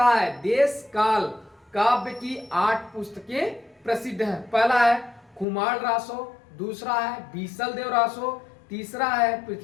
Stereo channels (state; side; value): drops out; right; at 5.5 s